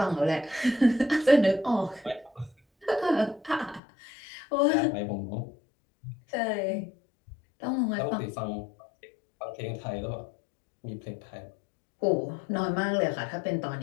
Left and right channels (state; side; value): drops out; right; at 3.8 s